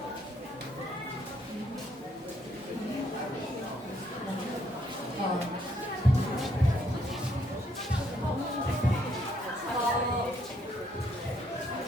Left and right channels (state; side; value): normal; both; correlation 0.70